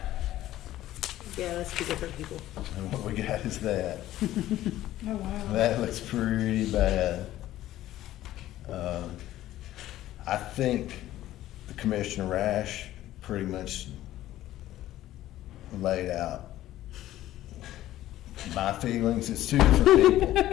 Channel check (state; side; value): quieter; right; 14.2 dB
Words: Yeah, let's be different people. and what we got is that. Oh, wow. That looks pretty bad. I think the Commissioner Rash pretty much laid out my feelings. It's two different